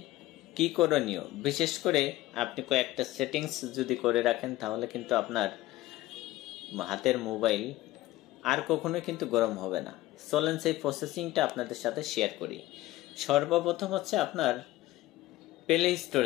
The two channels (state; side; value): quieter; right; 16.6 dB